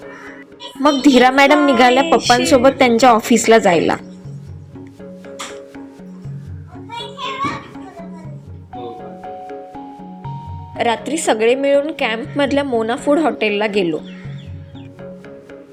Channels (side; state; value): both; identical; correlation 1.00